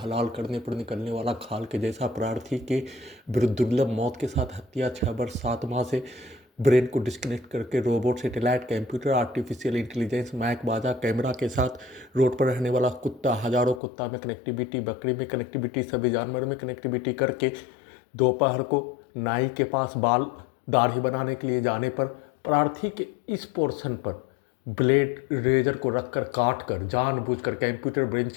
करने पर निकलने वाला खाल के जैसा प्रार्थी के विरुद्ध दुर्लभ मौत के साथ हत्या। 6 वर्ष 7 माह से ब्रेन को डिस्कनेक्ट करके robot, satellite, computer, artificial intelligence, mike बाजा, कैमरा के साथ रोड पर रहने वाला कुत्ता, हजारों कुत्ता में कनेक्टिविटी, बकरी में कनेक्टिविटी, सभी जानवरों में कनेक्टिविटी करके दोपहर को नाई के पास बाल दाढ़ी बनाने के लिए जाने पर प्रार्थी के इस पोर्शन पर ब्लेड रेजर को रखकर काट कर जानबूझकर कंप्यूटर ब्रेन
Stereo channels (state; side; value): drops out; right; at 13.8 s